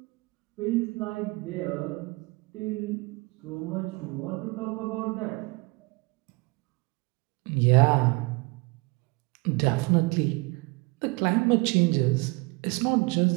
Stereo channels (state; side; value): quieter; left; 26.6 dB